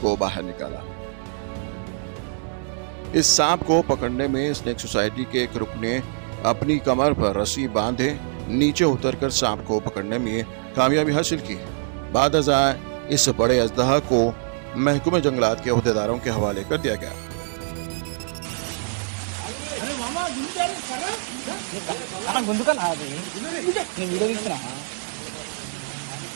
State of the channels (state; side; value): silent; left; digital silence